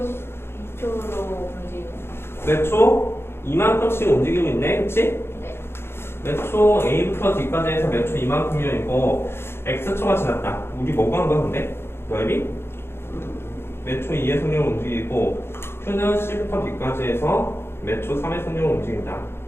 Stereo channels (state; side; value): late; right; 0.12 ms